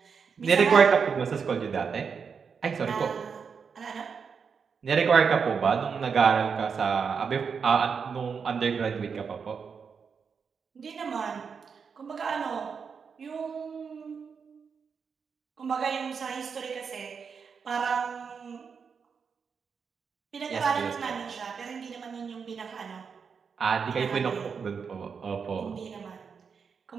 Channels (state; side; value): quieter; left; 6.0 dB